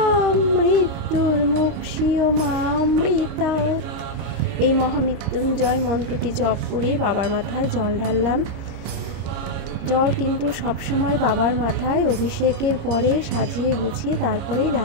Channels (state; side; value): late; left; 26 ms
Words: মৃত্যুর্মুক্ষীয়মামৃতাৎ। এই মহামৃত্যুঞ্জয় মন্ত্রটি জপ করে বাবার মাথায় জল ঢাললাম। জল কিন্তু সবসময় বাবার মাথায় অভিষেকের পরে সাজিয়ে গুছিয়ে তারপরেই